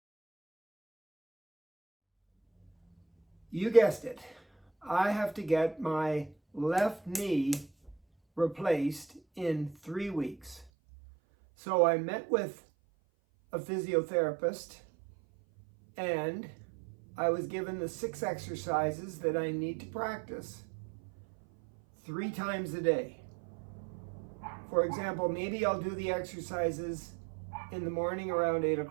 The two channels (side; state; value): left; drops out; at 10.7 s